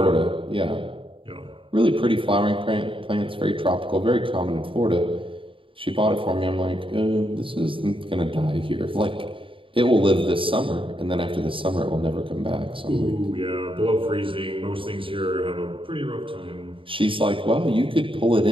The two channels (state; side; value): late; left; 0.25 ms